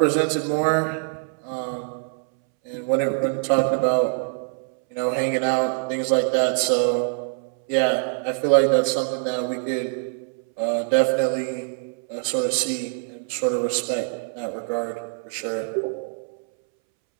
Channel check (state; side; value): silent; left; 63 dB below the other